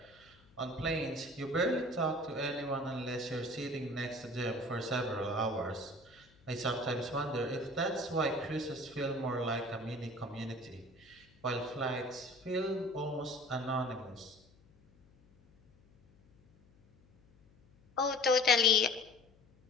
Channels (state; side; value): noise; left; hum, 28 dB below the sound